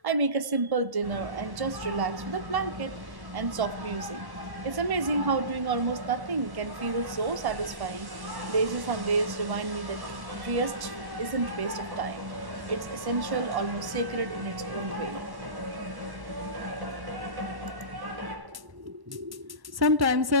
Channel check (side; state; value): left; late; 1.1 ms